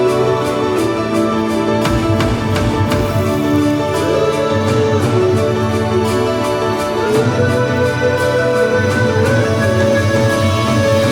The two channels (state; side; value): identical; both; correlation 1.00